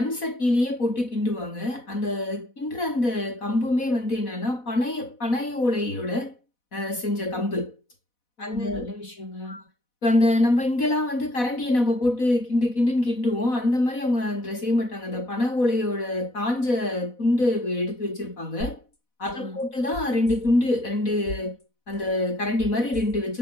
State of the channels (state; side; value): late; right; 4.1 ms